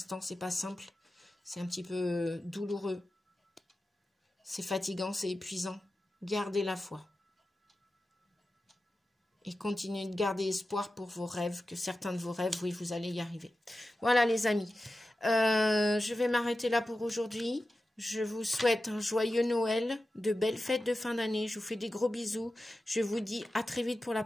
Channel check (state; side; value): normal; both; correlation 0.93